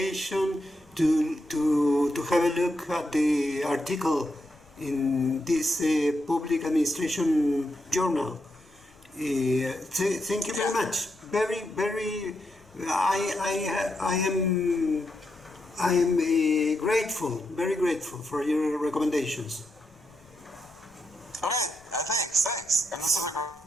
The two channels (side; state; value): left; noise; rumble, 28 dB below the sound